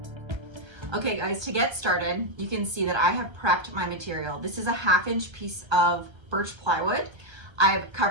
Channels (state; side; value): late; left; 1.2 ms